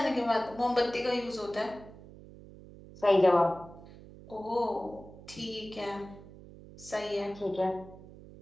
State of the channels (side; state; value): right; noise; hum, 18 dB below the sound